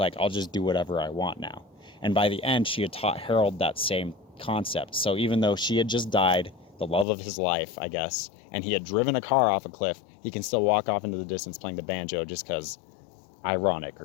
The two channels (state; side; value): drops out; right; at 7.1 s